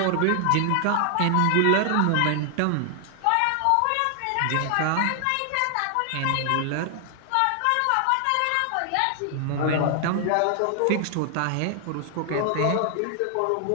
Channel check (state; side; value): different; both; correlation 0.00